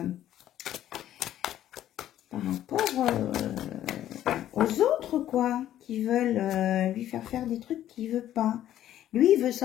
aux autres, quoi, qui veulent lui faire des trucs qu'il veut pas. Lui, il veut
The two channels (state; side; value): quieter; right; 12.1 dB